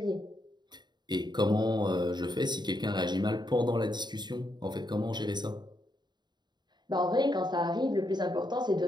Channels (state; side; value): late; left; 0.21 ms